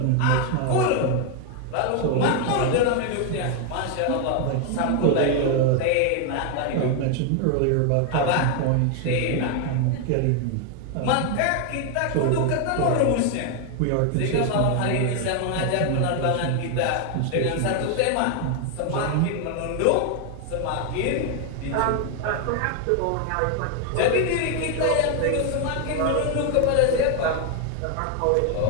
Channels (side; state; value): both; different; correlation 0.01